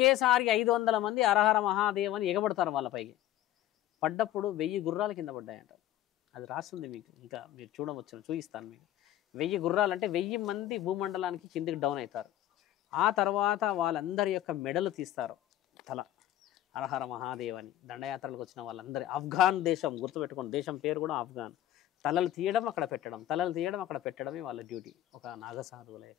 500 మంది హరహర మహాదేవ్ అని ఎగబడతారు. వాళ్ళ పైకి పడ్డప్పుడు 1000 గుర్రాల కింద పడ్డాయంట. అది రాస్తుంది మీకు, ఇంకా మీరు చూడవచ్చు, చూపిస్తాను మీకు. 1000 గుర్రాలు అంటే 1000 మంది భూమండలానికి కిందికి డౌన్ అవుతారు. ఆ తర్వాత వాళ్ళందరి యొక్క మెడలు తీస్తారు, తల. హరహర మహాదేవ్ అని దండయాత్రలకు వచ్చిన వాళ్ళందరి, ఆఫ్ఘాన్ దేశం గుర్తుపెట్టుకోండి, దేశం పేరు కూడా ఆఫ్ఘాన్. తలలు తీయడం అక్కడ పెట్టడం, తలలు తీయడం అక్కడ పెట్టడమే వాళ్ళ డ్యూటీ, ఒక నాగసాధువుల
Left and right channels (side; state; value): right; quieter; 13.3 dB